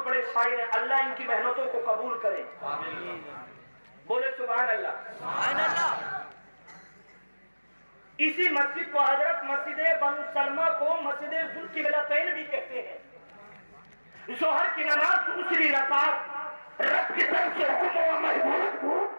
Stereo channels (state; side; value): inverted; both; correlation -1.00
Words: بڑے شاعر ہیں. اللہ ان کی محنتوں کو قبول کرے. بولے سبحان اللہ. اسی مسجد کو حضرت مسجد بنو سلمہ کو مسجد ذوالقبلتین بھی کہتے ہیں. ظہر کی نماز دوسری رکعت، رب کی طرف سے حکم و محبوب